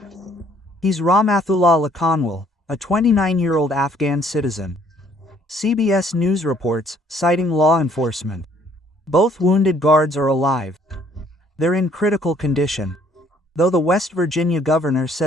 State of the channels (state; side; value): normal; both; correlation 0.62